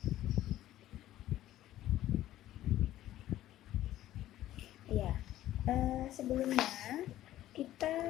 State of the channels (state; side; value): quieter; right; 13.8 dB